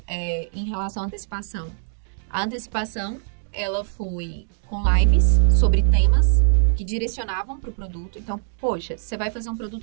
em relação à antecipação. A antecipação, ela foi com lives sobre temas que direcionavam pro produto. Então, poxa, você vai fazer um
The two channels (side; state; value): left; silent; digital silence